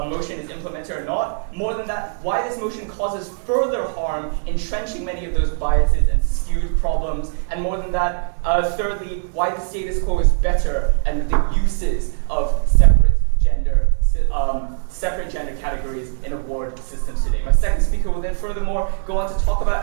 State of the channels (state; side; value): silent; left; digital silence